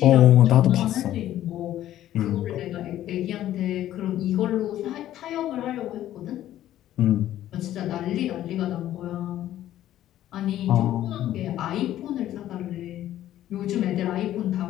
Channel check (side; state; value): right; quieter; 12.8 dB